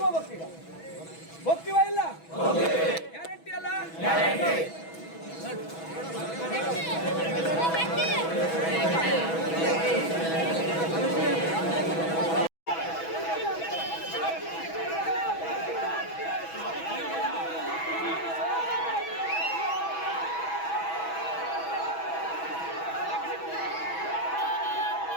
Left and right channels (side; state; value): right; late; 6.1 ms